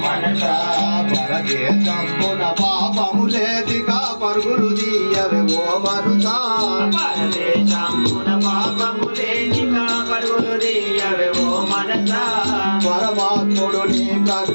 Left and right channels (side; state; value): both; inverted; correlation -1.00